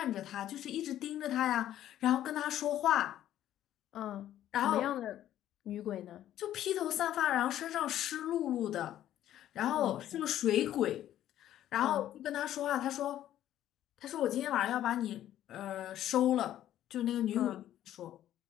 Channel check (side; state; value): right; quieter; 12.2 dB